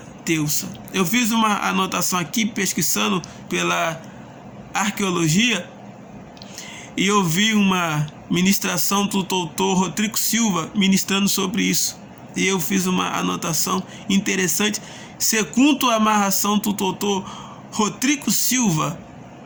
deusa. Eu fiz uma anotação aqui, pesquisando pela arqueologia, e eu vi uma ministração do doutor Rodrigo Silva ministrando sobre isso. E eu fiz uma anotação interessante. Segundo a amarração do doutor Rodrigo Silva,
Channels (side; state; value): both; identical; correlation 1.00